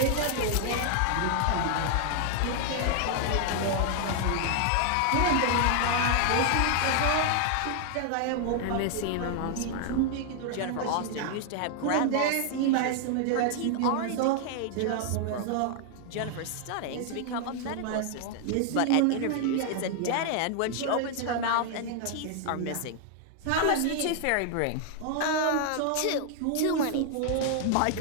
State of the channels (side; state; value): both; different; correlation 0.00